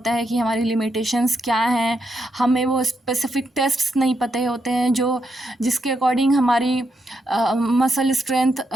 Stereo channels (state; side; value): normal; both; correlation 0.81